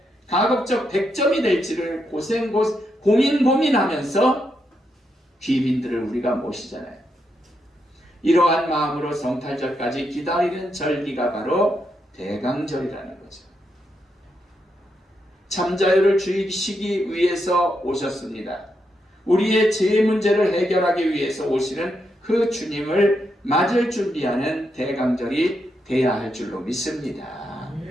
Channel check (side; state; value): both; normal; correlation 0.82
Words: 가급적 100점이 될지를 고민하면서 귀빈들을 우리가 모시잖아요. 이러한 마음으로 성탈절까지 기다리는 절기가 바로 대강절이라는 거죠. 참자유를 주시기 위해서 오셨습니다. 우리의 죄 문제를 해결하기 위해서 오시는 그 주님을 맞을 준비하는 대강절이 돼야 할 줄로 믿습니다.